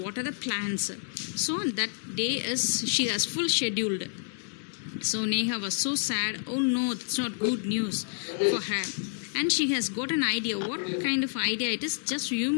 water the plants. So that day is she has full scheduled. So Neha was so sad. Oh no, it's not good news for her. And she has got an idea. What kind of idea it is? Just you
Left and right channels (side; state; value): right; silent; 57 dB below the other